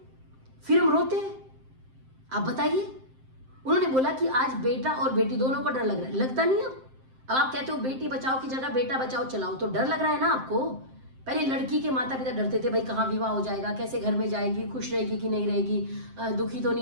फिर हम रोते हैं। आप बताइए। उन्होंने बोला कि आज बेटा और बेटी दोनों को डर लग रहा है, लगता नहीं है। अब आप कहते हो बेटी बचाओ की जगह बेटा बचाओ चलाओ, तो डर लग रहा है ना आपको। पहले लड़की के माता पिता डरते थे, भाई कहाँ विवाह हो जाएगा, कैसे घर में जाएगी, खुश रहेगी कि नहीं रहेगी, दुखी तो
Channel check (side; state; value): left; late; 7.6 ms